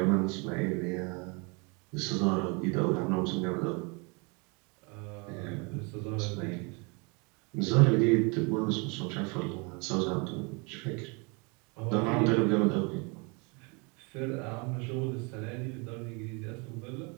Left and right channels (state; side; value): quieter; left; 31.0 dB